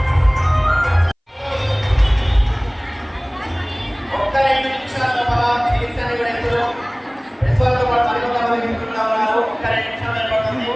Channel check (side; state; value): both; identical; correlation 1.00